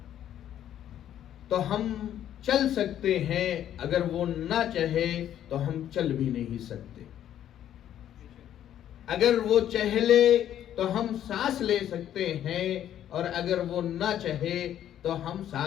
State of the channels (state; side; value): quieter; right; 10.9 dB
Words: تو ہم چل سکتے ہیں، اگر وہ نہ چاہے تو ہم چل بھی نہیں سکتے. اگر وہ چاہے لے تو ہم سانس لے سکتے ہیں، اور اگر وہ نہ چاہے تو ہم